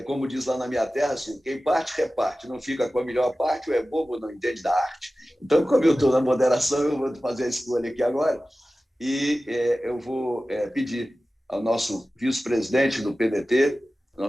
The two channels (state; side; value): normal; both; correlation 0.96